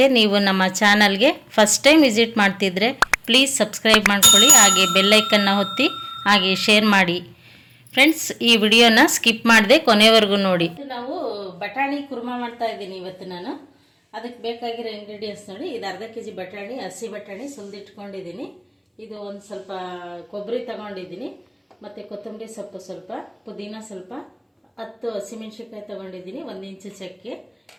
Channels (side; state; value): both; identical; correlation 1.00